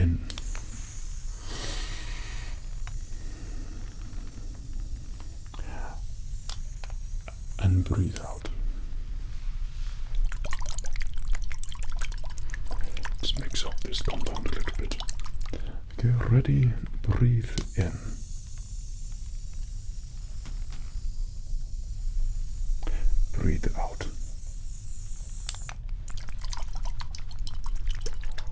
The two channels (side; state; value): both; identical; correlation 1.00